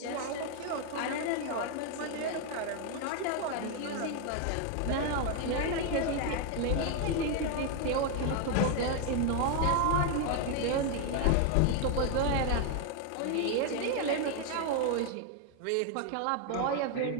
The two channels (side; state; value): both; different; correlation 0.01